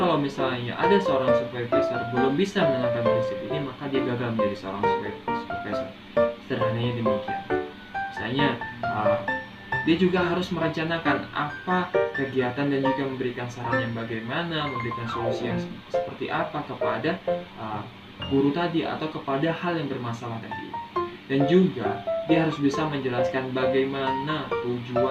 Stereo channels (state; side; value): identical; both; correlation 1.00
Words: misalnya ada seorang supervisor belum bisa menerapkan prinsip ini, maka dia gagal menjadi seorang supervisor. Sederhananya demikian. Misalnya dia juga harus merencanakan apa kegiatan dan juga memberikan saran yang bagaimana, memberikan solusi yang seperti apa kepada guru tadi atau kepada hal yang bermasalah tadi. Dan juga dia harus bisa menjelaskan bagaimana